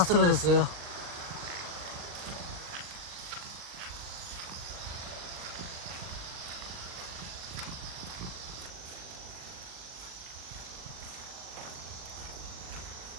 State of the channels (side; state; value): left; late; 40 ms